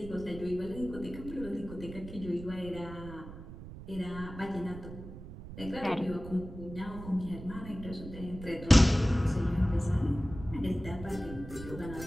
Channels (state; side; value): noise; right; rumble, 12 dB below the sound